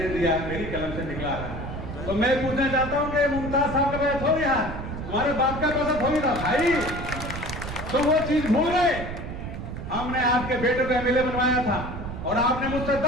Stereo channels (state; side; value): noise; right; rumble, 7 dB below the sound